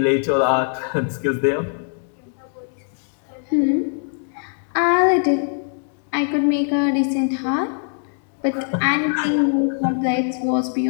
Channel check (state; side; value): silent; right; digital silence